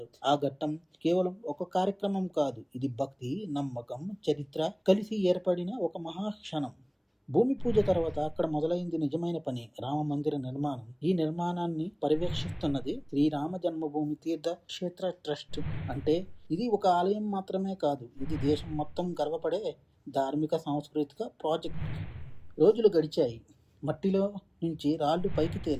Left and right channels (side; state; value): both; identical; correlation 1.00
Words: ఆ ఘట్టం కేవలం ఒక కార్యక్రమం కాదు, ఇది భక్తి, నమ్మకం, చరిత్ర కలిసి ఏర్పడిన ఒక మహాక్షణం. భూమి పూజ తర్వాత అక్కడ మొదలైంది నిజమైన పని, రామ మందిర నిర్మాణం. ఈ నిర్మాణాన్ని పర్యవేక్షిస్తున్నది శ్రీరామ జన్మభూమి తీర్థ క్షేత్ర ట్రస్ట్. అంటే ఇది ఒక ఆలయం మాత్రమే కాదు, ఇది దేశం మొత్తం గర్వపడే ధార్మిక సాంస్కృతిక ప్రాజెక్ట్. రోజులు గడిచాయి. మట్టిలో నుంచి రాళ్లు పైకి